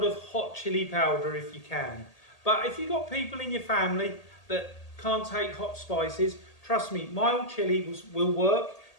of hot chilli powder if you can. But if you've got people in your family that can't take hot spices, trust me, mild chilli will work.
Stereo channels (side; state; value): right; late; 1.8 ms